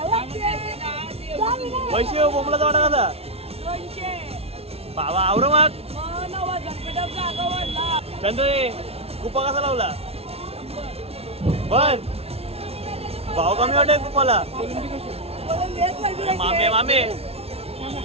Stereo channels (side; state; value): left; late; 0.30 ms